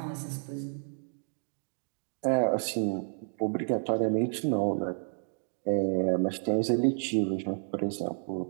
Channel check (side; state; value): left; silent; digital silence